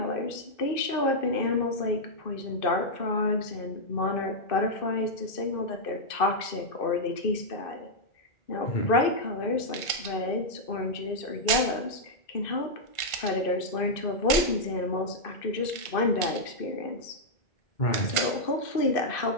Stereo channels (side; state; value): right; late; 1.5 ms